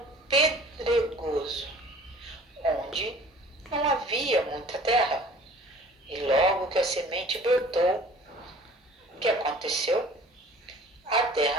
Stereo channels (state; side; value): normal; both; correlation 0.48